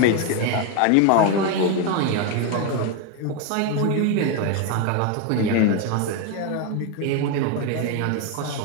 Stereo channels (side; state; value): both; different; correlation 0.02